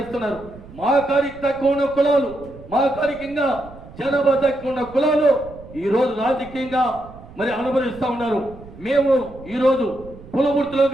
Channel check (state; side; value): noise; right; rumble, 18 dB below the sound